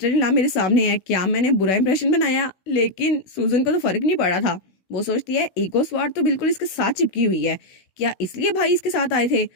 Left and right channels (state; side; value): late; right; 16 ms